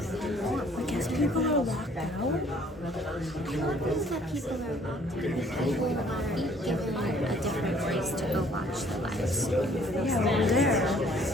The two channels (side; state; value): both; normal; correlation 0.59